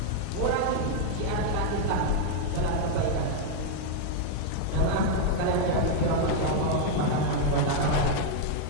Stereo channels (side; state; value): both; different; correlation 0.00